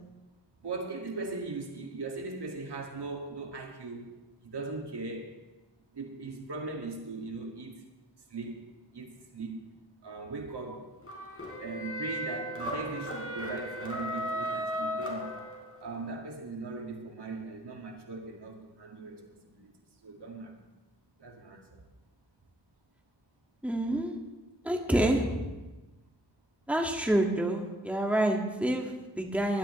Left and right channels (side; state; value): both; normal; correlation 0.58